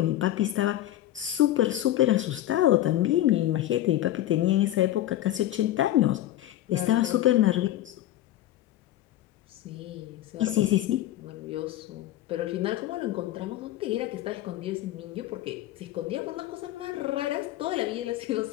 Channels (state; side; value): quieter; right; 13.6 dB